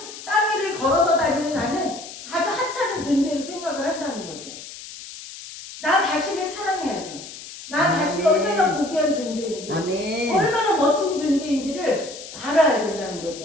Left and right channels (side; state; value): left; noise; hiss, 13 dB below the sound